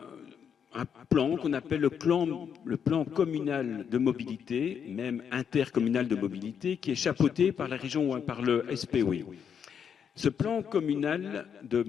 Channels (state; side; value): quieter; right; 7.5 dB